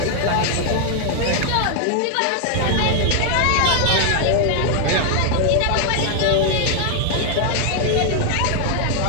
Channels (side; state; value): both; different; correlation 0.00